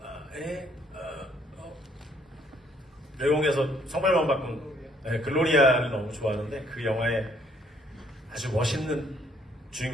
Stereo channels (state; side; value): normal; both; correlation 0.65